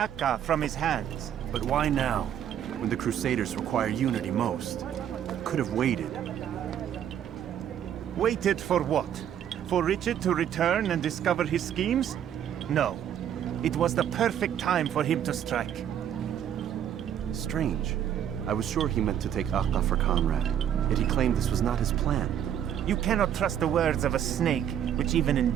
from his hands. But why now, when the Crusaders require unity most? Could have waited. Waited for what? For Richard to return and discover his schemes? No. It was the perfect time for him to strike. Strange. I was sure he meant to take Akka for Conrad, yet he claimed this was not his plan. You cannot trust the words of a snake, which even in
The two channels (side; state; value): left; quieter; 9.8 dB